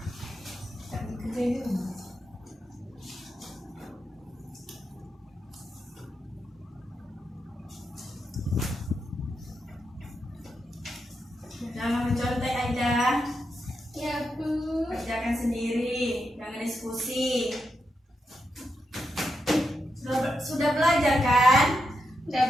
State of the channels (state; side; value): normal; both; correlation 0.85